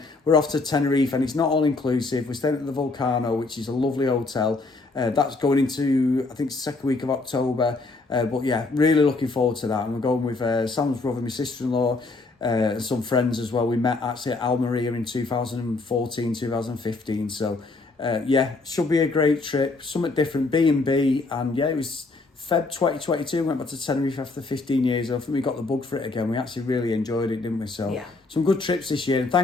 we're off to Tenerife and it's not all inclusive. We're staying at the Volcano, which is a lovely hotel. That's going into, I think, second week of October. But yeah, really looking forward to that. And we're going with Sam's brother, my sister-in-law, and some friends as well. We met actually at Almeria in 2014, 2015. So yeah, should be a great trip. Something different, B&B. And yeah, it was Feb 2022. Went back to Tenerife after 15 years. I think we got the bug for it again. We actually really enjoyed it, didn't we? So yeah, some good trips this year. And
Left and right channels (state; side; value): quieter; right; 3.5 dB